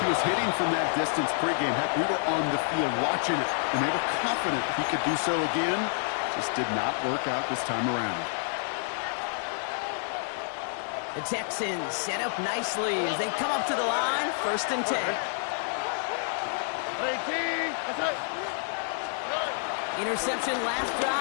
He was hitting from that distance pregame. Heck, we were on the field watching it, and they were confident he could do so again. Just did not work out this time around. The Texans set up nicely as they come up to the line, 1st and 10. Interception last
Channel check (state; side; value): silent; right; digital silence